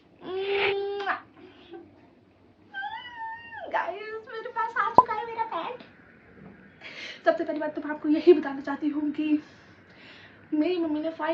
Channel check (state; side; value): identical; both; correlation 1.00